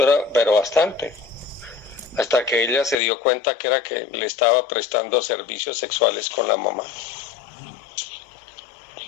era, pero bastante. Hasta que ella se dio cuenta que era que le estaba prestando servicios sexuales con la mamá.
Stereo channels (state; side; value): drops out; right; at 3.0 s